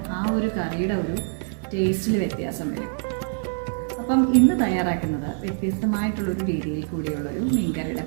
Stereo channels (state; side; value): silent; left; 62 dB below the other